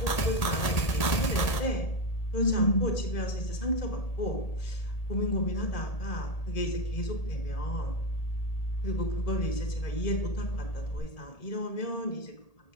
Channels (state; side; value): late; right; 1.8 ms